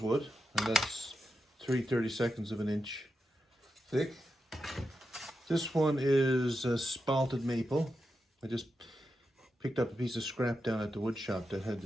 and that's 3/32 of an inch thick. This one is spalted maple. I just picked up a piece of scrap down at the wood shop that had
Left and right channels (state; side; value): normal; both; correlation 0.88